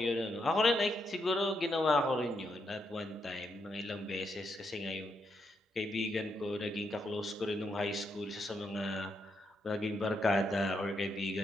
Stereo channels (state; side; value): normal; both; correlation 0.80